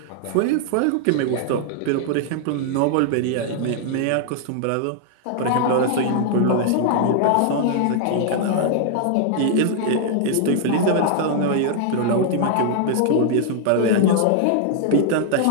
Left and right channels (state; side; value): different; both; correlation 0.00